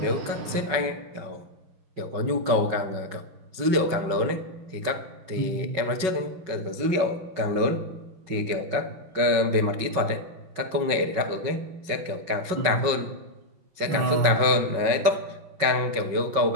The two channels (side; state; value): left; late; 5.4 ms